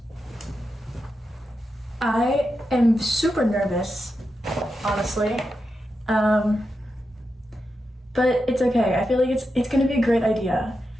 I am super nervous, honestly, but it's okay. I feel like it's gonna be a great idea.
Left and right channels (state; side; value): normal; both; correlation 0.88